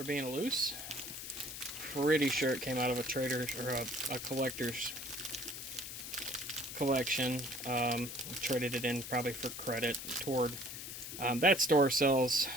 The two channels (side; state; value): left; noise; hiss, 8 dB below the sound